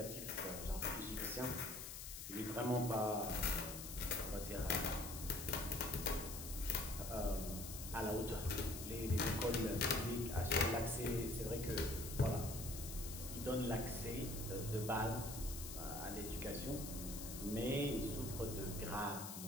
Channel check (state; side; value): noise; left; hiss, 8 dB below the sound